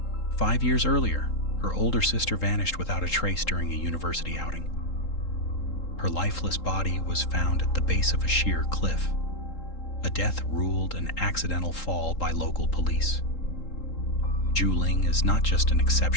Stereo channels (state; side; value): late; right; 3.8 ms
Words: 5 years earlier, her older sister vanished without a trace during a university outing. Her lifeless body was found at the base of a sheer cliff, a death ruled an accidental fall by local police. Zhu Ling is not just an